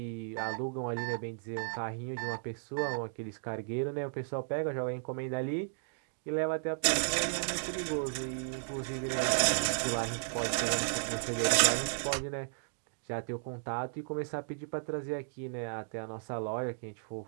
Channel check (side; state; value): left; silent; digital silence